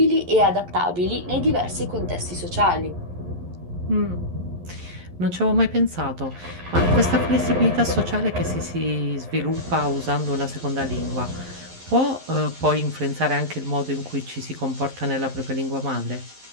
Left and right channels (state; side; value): late; left; 11 ms